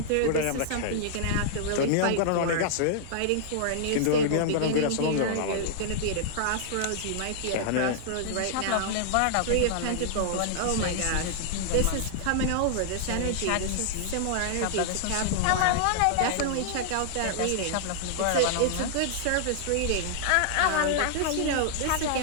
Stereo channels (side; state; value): both; different; correlation -0.01